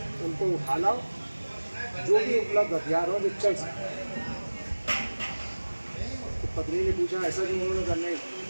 उनको उठा लाओ, जो भी उपलब्ध हथियार हो जो चल सके। तो पत्नी ने पूछा ऐसा क्यों? उन्होंने कहा नहीं,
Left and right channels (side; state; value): both; inverted; correlation -1.00